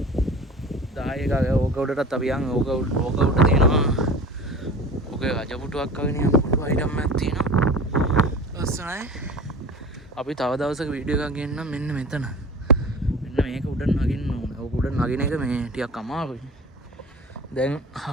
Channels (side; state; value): both; normal; correlation 0.38